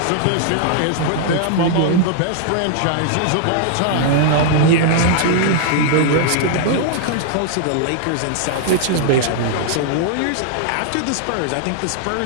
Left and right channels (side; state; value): both; different; correlation -0.01